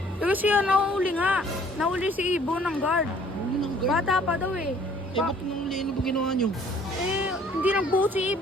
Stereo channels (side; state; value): both; normal; correlation 0.57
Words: Kasi yan, nahuli nga. Nahuli si Ibo ng guard. Ano nang guard? Bata pa daw eh. Eh, ba't nang ano ba ginawa nyo? Eh, hindi nagbuo si